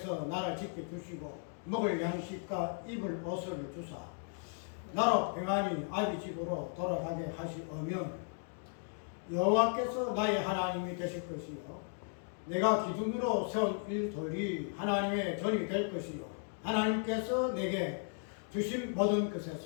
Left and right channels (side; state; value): right; silent; 54 dB below the other